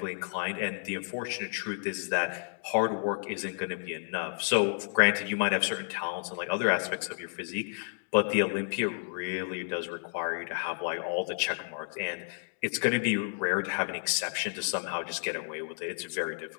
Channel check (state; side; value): silent; right; digital silence